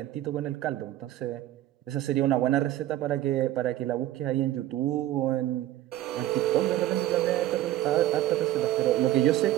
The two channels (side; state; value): left; quieter; 14.0 dB